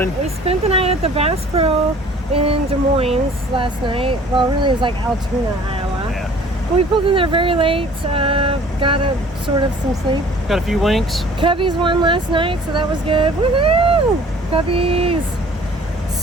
We spent the night at the Bass Pro in Des Moines last night. Well, really, it was like Altoona, Iowa. Yeah. But we pulled in there very late. Got some sleep. Got a few winks. Cubbies won last night, so that was good. Woohoo! Cubbies!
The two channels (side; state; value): both; normal; correlation 0.51